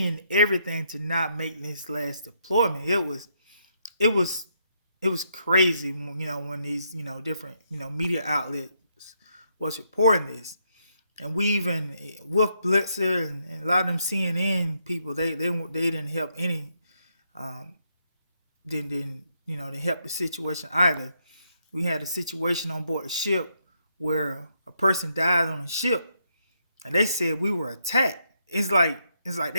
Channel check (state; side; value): inverted; both; correlation -0.77